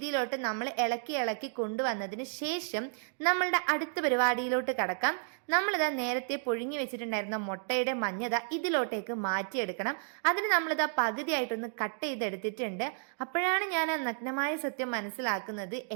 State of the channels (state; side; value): silent; left; 56 dB below the other